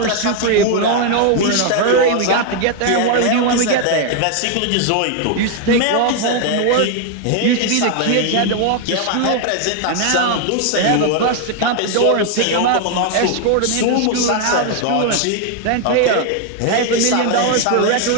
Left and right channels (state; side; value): different; both; correlation 0.01